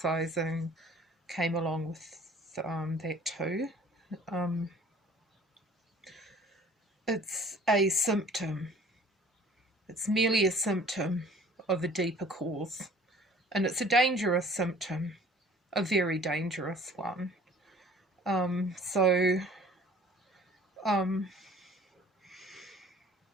came along with that too. It's a symptom. It's merely a symptom of a deeper cause. And it's a dangerous symptom, a very dangerous one. So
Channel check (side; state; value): both; normal; correlation 0.50